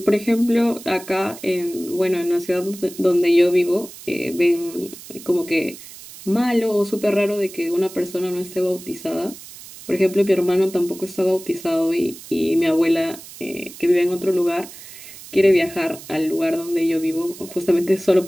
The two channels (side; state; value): right; noise; hiss, 16 dB below the sound